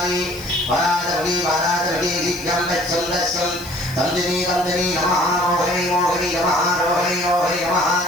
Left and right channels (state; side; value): noise; left; hiss, 17 dB below the sound